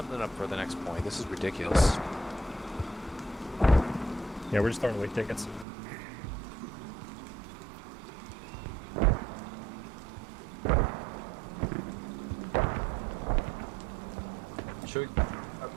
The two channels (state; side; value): drops out; left; at 5.7 s